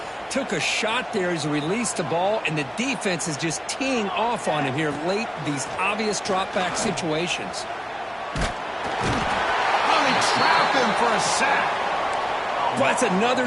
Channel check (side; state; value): both; identical; correlation 1.00